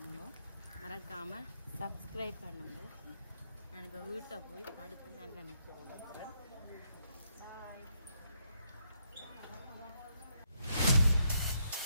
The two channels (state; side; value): inverted; both; correlation -0.76